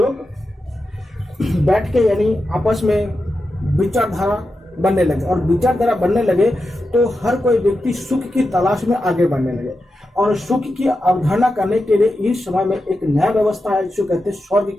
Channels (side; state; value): both; normal; correlation 0.89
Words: बैठ के यानी आपस में विचारधारा बनने लगे। और विचारधारा बनने लगे तो हर कोई व्यक्ति सुख की तलाश में आगे बढ़ने लगे। और सुख की अवधारणा करने के लिए इस समय में एक नया व्यवस्था है जिसे कहते हैं स्वर्ग